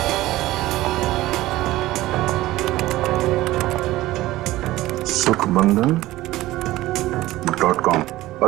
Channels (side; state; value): left; quieter; 16.9 dB